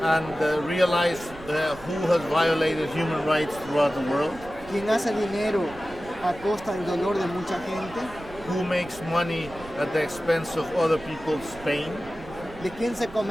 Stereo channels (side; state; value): right; noise; rumble, 19 dB below the sound